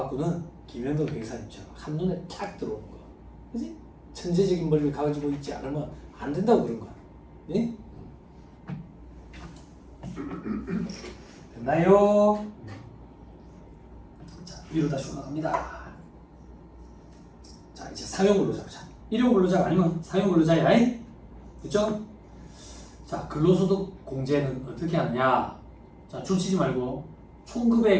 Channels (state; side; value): identical; both; correlation 1.00